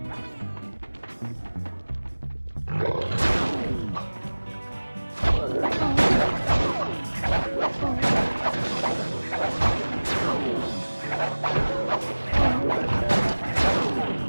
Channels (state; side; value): inverted; both; correlation -1.00